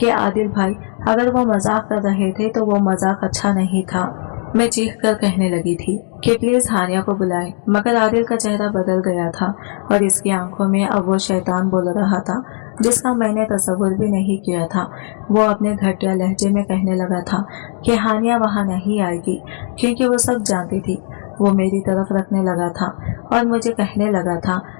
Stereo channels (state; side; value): silent; right; 58 dB below the other